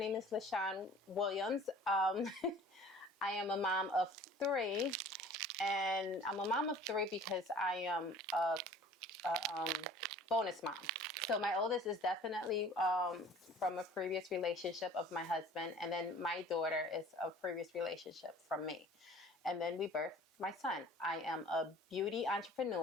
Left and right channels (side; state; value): both; normal; correlation 0.48